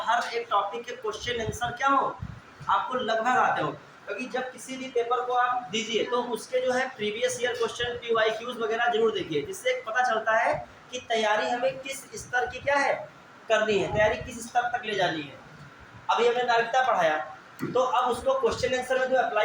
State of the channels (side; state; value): both; identical; correlation 1.00